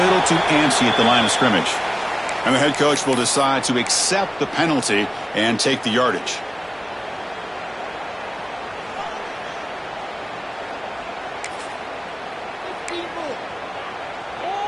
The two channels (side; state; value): both; identical; correlation 1.00